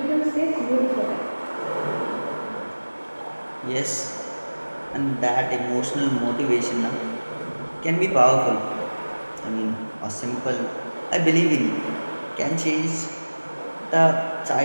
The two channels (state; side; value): inverted; both; correlation -1.00